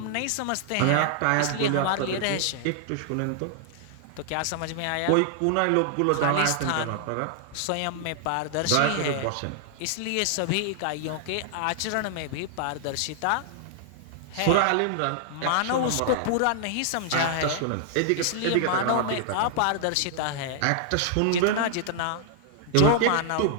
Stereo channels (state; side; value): different; both; correlation -0.01